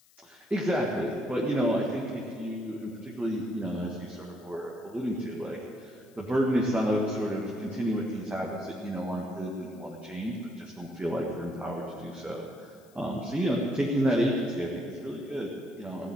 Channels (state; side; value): noise; left; hiss, 29 dB below the sound